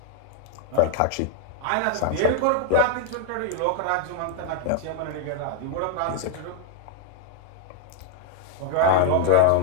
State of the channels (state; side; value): different; both; correlation 0.00